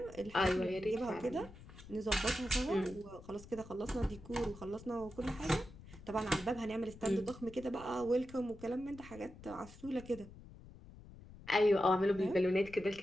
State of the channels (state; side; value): noise; left; rumble, 17 dB below the sound